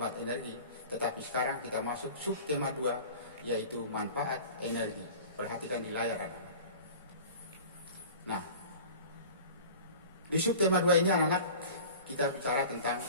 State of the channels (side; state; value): both; inverted; correlation -0.40